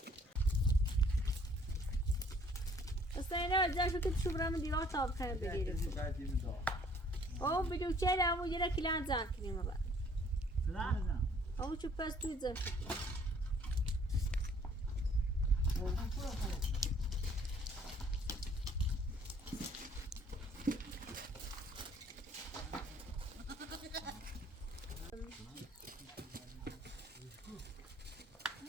استاینا ازش که شو برام دیوار تاب کنه بگیره او بیدو چه همو یه کلان زن کنیم بعد همو چه پستوی زن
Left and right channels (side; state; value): both; normal; correlation 0.59